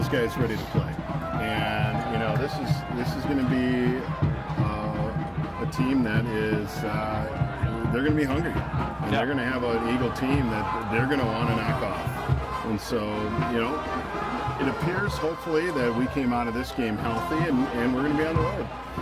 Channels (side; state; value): both; identical; correlation 1.00